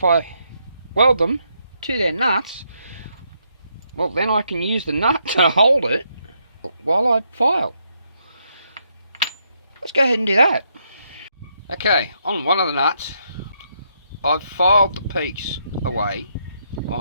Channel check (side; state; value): both; inverted; correlation -0.77